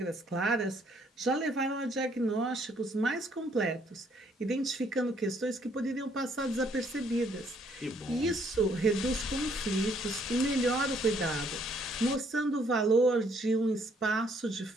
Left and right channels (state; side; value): normal; both; correlation 0.66